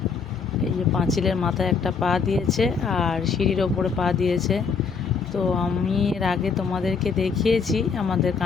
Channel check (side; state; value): right; quieter; 5.6 dB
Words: এই যে পাঁচিলের মাথায় একটা পা দিয়েছে আর সিঁড়ির ওপরে পা দিয়েছে। তো আমি এর আগে তোমাদেরকে দেখিয়েছি আমাদের